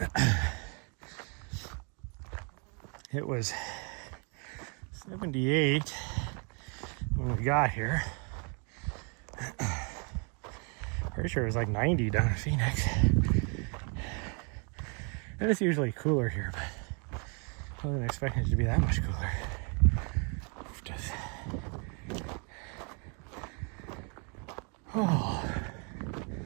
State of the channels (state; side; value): quieter; left; 36.6 dB